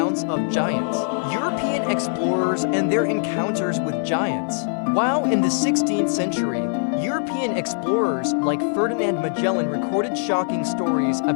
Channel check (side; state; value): right; silent; digital silence